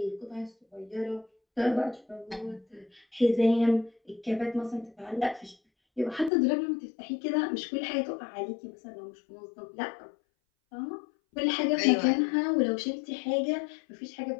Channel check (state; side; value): drops out; right; at 6.3 s